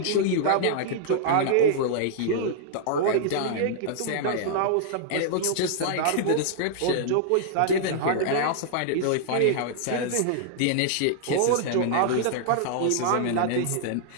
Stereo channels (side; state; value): both; different; correlation -0.01